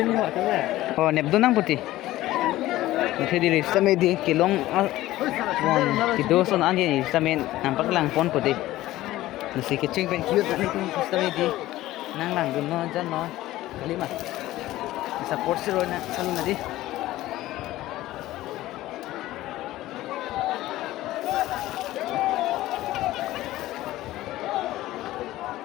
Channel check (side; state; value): right; quieter; 16.0 dB